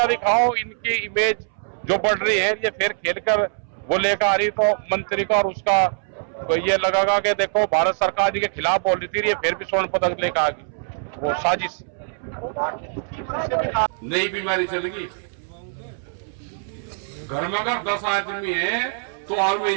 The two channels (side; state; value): left; silent; 63 dB below the other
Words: दिखाओ, इनकी इमेज जो बढ़ रही है, ये फिर खेल कर वो लेकर आ रही, तो मंत्री का और उसका तो ये लगेगा कि देखो भारत सरकार जी के खिलाफ बोल रही थी, ये फिर भी स्वर्ण पदक लेकर आ गई, वो साजिश। नई बीमारी चलेगी, घर में अगर 10 आदमी है तो और